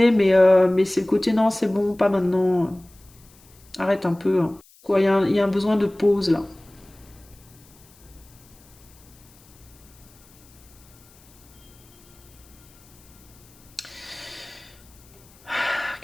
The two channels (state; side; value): noise; left; hiss, 27 dB below the sound